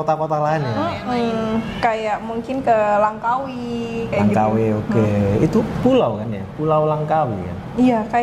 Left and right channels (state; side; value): identical; both; correlation 1.00